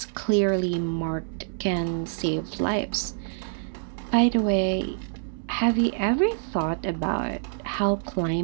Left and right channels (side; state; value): left; silent; 59 dB below the other